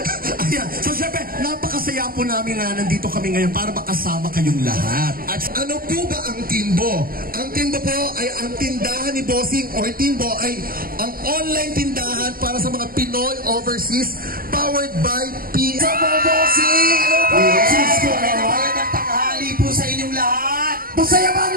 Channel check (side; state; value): left; late; 0.42 ms